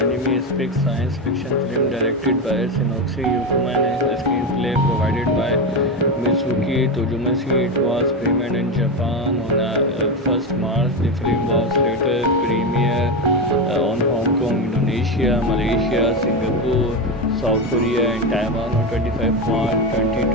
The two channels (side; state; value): both; normal; correlation 0.15